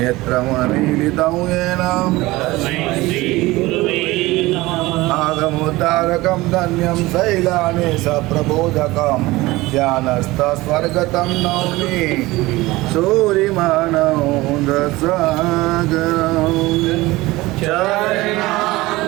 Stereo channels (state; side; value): quieter; left; 19.8 dB